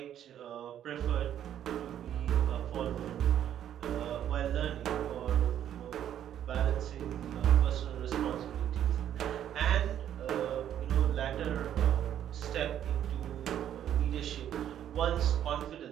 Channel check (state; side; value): quieter; left; 10.4 dB